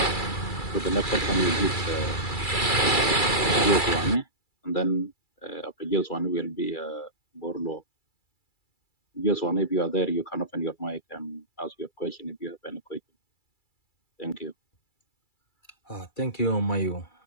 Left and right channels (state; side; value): late; right; 2.3 ms